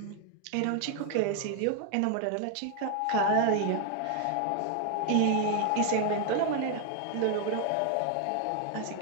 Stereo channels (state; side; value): different; both; correlation 0.01